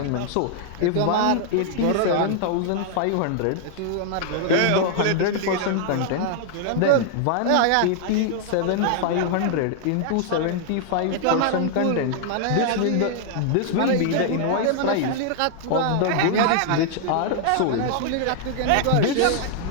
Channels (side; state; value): both; different; correlation 0.00